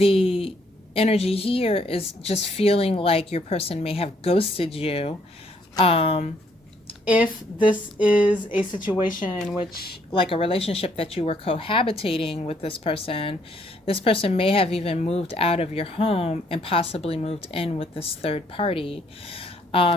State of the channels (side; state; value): both; normal; correlation 0.68